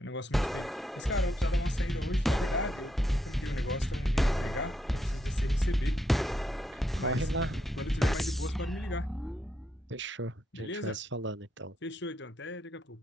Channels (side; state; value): both; normal; correlation 0.80